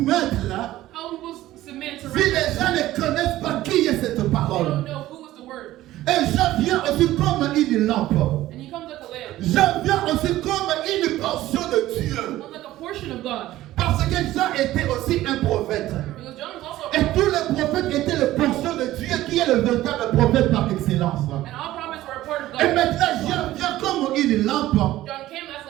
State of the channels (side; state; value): left; quieter; 15.3 dB